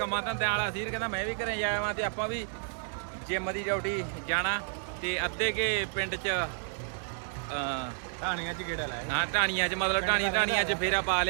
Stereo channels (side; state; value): left; silent; digital silence